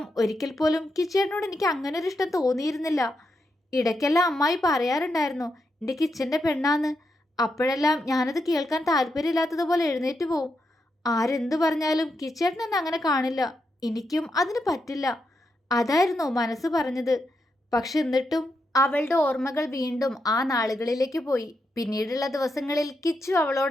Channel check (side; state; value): both; normal; correlation 0.83